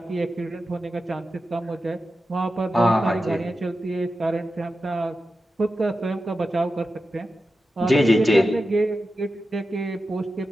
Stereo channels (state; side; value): normal; both; correlation 0.91